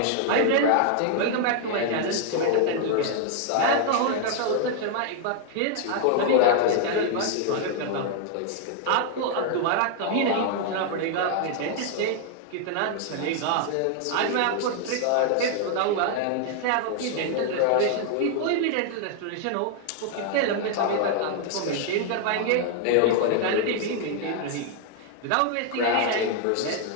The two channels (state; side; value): different; both; correlation 0.00